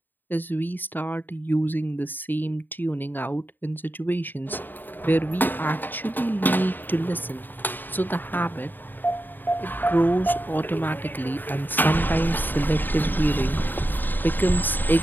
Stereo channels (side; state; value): right; late; 0.091 ms